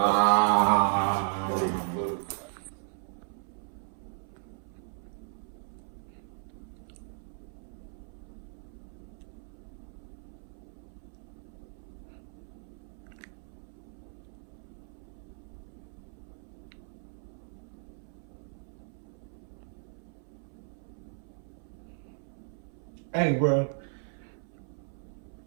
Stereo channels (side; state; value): left; silent; 54 dB below the other